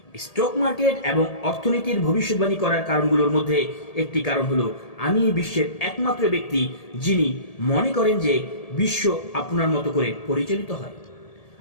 স্টক মার্কেট এবং অর্থনীতির ভবিষ্যৎবাণী করার কারণগুলোর মধ্যে একটি কারণ হলো আমি বিশ্বের একমাত্র ব্যক্তি যিনি মনে করেন যে বিশ্ব আপনার মতো করে পরিচালিত হয়।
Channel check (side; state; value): right; late; 1.8 ms